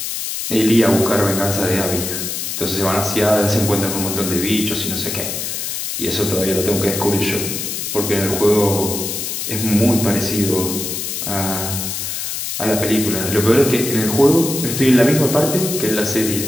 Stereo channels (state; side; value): noise; left; hiss, 4 dB below the sound